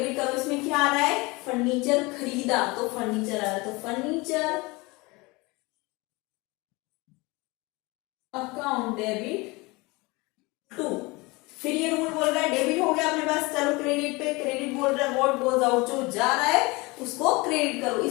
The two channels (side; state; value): right; quieter; 24.5 dB